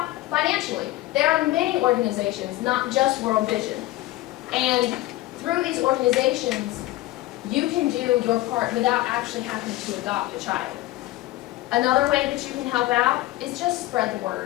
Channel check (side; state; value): right; quieter; 17.2 dB